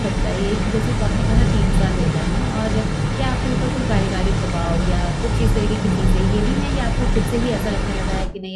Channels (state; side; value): identical; both; correlation 1.00